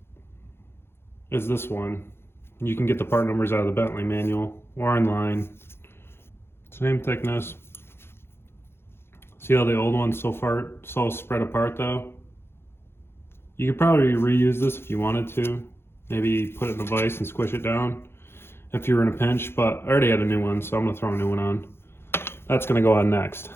as this one. You can get the part numbers out of the Bentley manual or online. Same thickness. See how the old one's so spread apart though? You could probably reuse this if you wanted to. Maybe put it in a vise and squish it down if you were in a pinch, but I already had a new one, so I'm gonna throw a new one on. That's gonna go on next.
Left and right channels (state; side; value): late; right; 0.11 ms